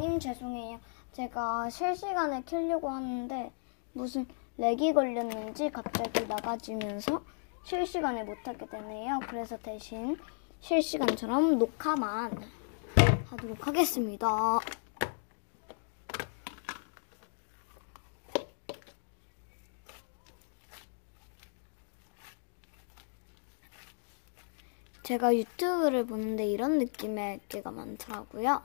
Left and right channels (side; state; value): right; silent; digital silence